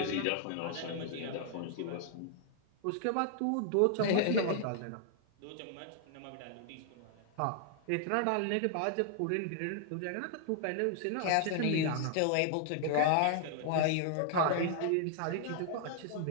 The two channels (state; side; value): different; both; correlation -0.01